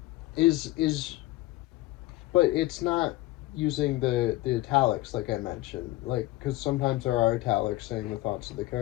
is but it's not using the italics like I mentioned, like because sometimes there are italics saying the thoughts of the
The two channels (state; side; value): quieter; right; 18.6 dB